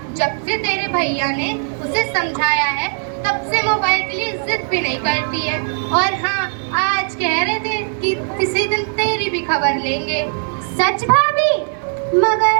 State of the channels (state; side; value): silent; left; 58 dB below the other